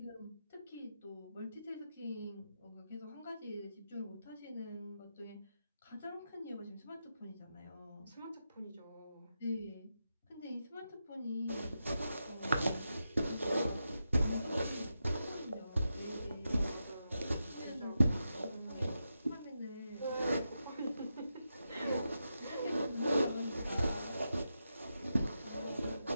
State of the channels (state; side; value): inverted; both; correlation -0.88